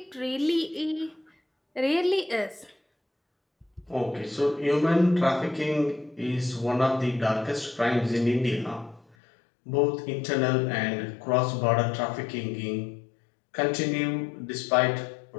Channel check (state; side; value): drops out; right; at 9.2 s